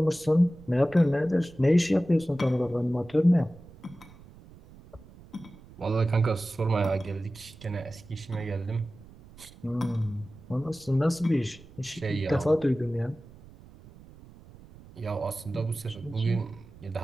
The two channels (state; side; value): noise; right; rumble, 21 dB below the sound